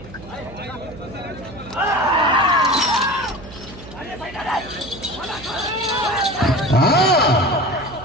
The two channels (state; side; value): noise; right; hum, 17 dB below the sound